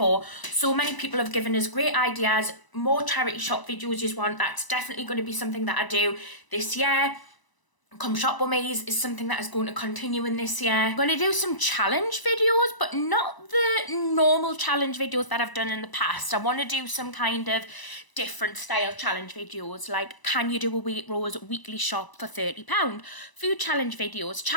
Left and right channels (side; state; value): right; late; 1.0 ms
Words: So many people have given us great ideas, more charity shop videos you want. That's definitely going to be something that I do this year. Come Shop With Me is something that is going to continue in this year. I'm going to do some challenge videos, but not the normal challenge videos that I've done in the past. I want to do some kind of different style challenge videos, like can you do a Waitrose weekly shop for £30? Food challenge